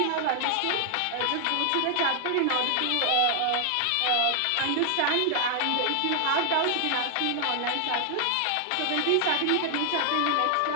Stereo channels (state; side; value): different; both; correlation 0.00